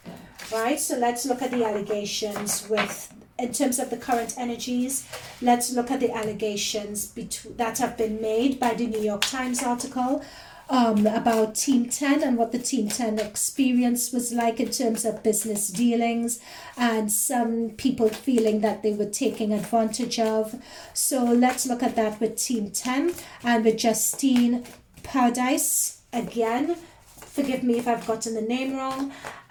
right? So let's look at the allegations with, in terms of the current energies. Let's look at the allegations that have been made by the New York Times article about Team 10 and what the Team 10 experience was like in terms of business dealings, and some people feeling that they were taking advantage of. So let's look at that with Team 10 and with Justine Paradise again. Forgive me if I've gotten the name wrong.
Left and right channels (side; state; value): both; identical; correlation 1.00